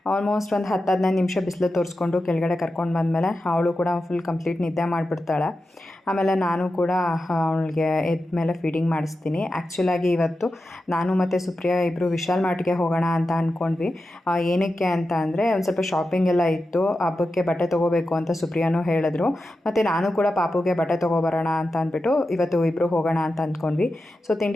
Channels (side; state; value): both; normal; correlation 0.91